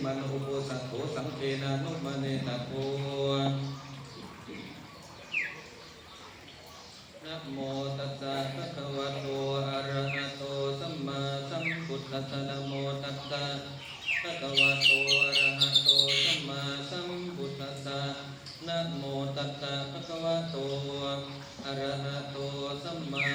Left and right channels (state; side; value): identical; both; correlation 1.00